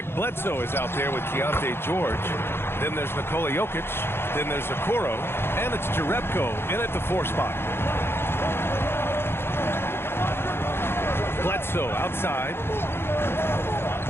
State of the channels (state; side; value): late; right; 0.11 ms